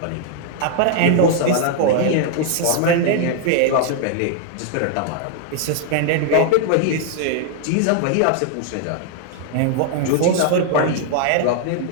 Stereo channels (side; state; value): both; different; correlation 0.00